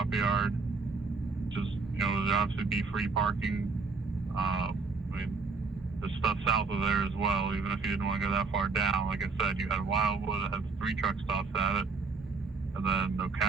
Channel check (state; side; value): quieter; left; 4.4 dB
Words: yard. Just, there'd obviously be free parking. There's stuff south of there as well, even if you didn't want to go that far down. Like I said, you had Wildwood that has 3 truck stops at it, and then